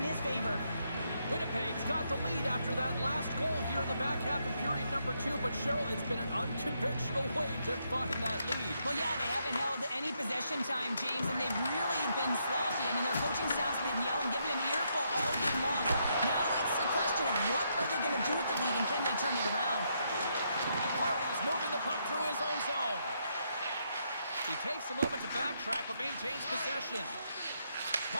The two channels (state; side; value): inverted; both; correlation -0.77